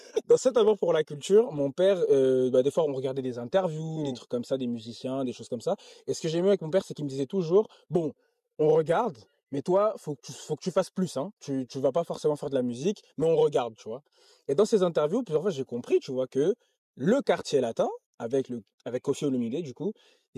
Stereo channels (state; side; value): identical; both; correlation 1.00